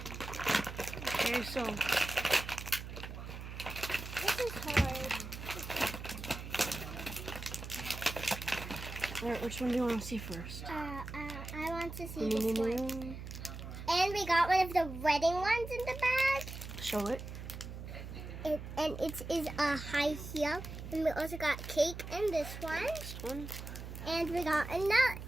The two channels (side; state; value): right; noise; hum, 9 dB below the sound